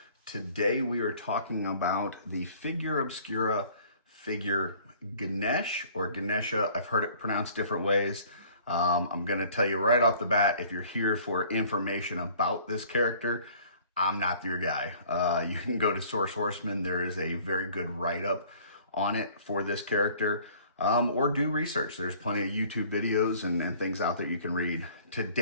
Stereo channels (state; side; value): inverted; both; correlation -0.53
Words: Today we are talking about the Figura Obscura figure Ganesh or Ganesha. I've heard it pronounced different ways. I'm going to tell you right off the bat, if you're here for information about this character, I'm not your guy. You can go to Source Horseman. There is a very good write-up on it for this character. Or do research. There's plenty of YouTube videos and things out there you can read.